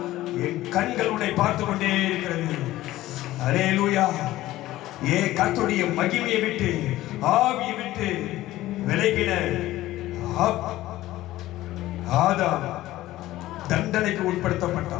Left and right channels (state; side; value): quieter; right; 15.9 dB